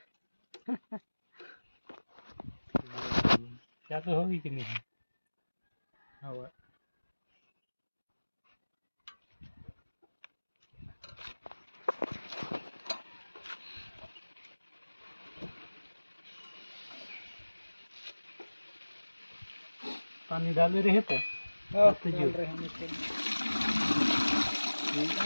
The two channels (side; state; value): both; inverted; correlation -1.00